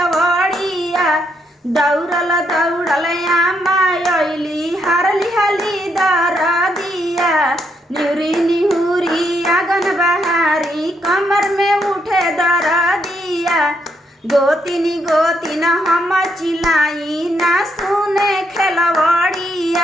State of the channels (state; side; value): normal; both; correlation 0.76